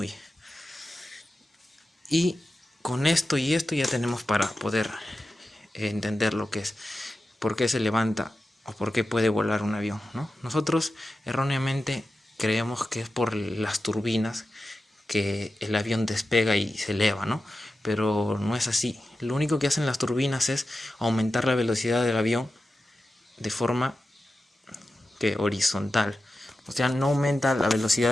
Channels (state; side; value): normal; both; correlation 0.92